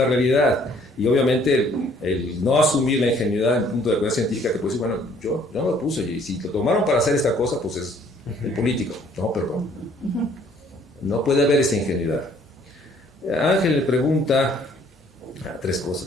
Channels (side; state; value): both; normal; correlation 0.60